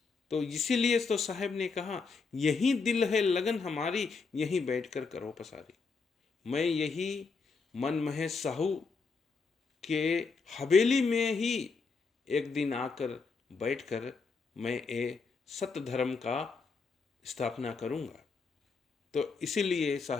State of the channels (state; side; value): quieter; right; 4.7 dB